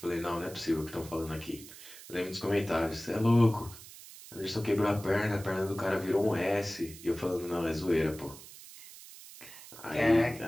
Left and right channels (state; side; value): noise; right; hiss, 17 dB below the sound